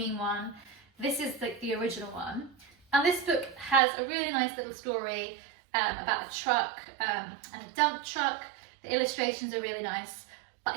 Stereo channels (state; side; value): drops out; left; at 3.8 s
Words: one. This is the original one. And this book has a really nice little story about a truck and a dump truck. The illustrations are really nice.